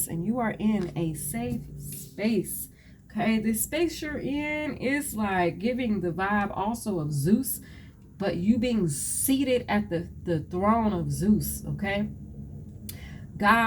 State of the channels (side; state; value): both; identical; correlation 1.00